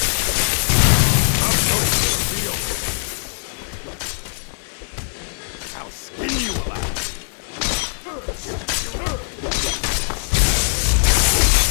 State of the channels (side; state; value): right; silent; digital silence